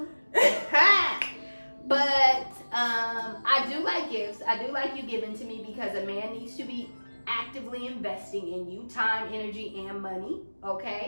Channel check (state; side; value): inverted; both; correlation -1.00